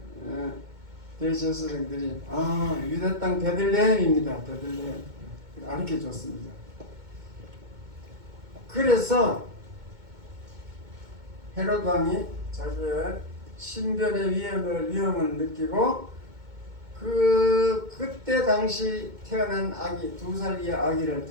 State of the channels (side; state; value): left; late; 2.2 ms